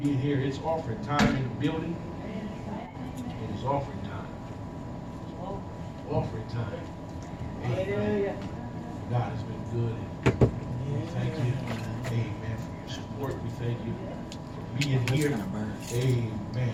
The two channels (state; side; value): identical; both; correlation 1.00